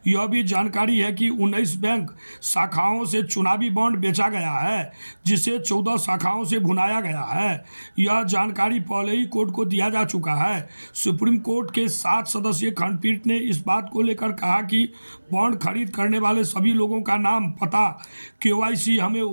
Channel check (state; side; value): inverted; both; correlation -1.00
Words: यह भी जानकारी है कि 19 बैंक शाखाओं से चुनावी बॉन्ड बेचा गया है, जिसे 14 शाखाओं से भुनाया गया है। यह जानकारी पहले ही कोर्ट को दिया जा चुका है। सुप्रीम कोर्ट के 7 सदस्यीय खंडपीठ ने इस बात को लेकर कहा कि बॉन्ड खरीद करने वाले सभी लोगों का नाम, पता, केवाईसी हमें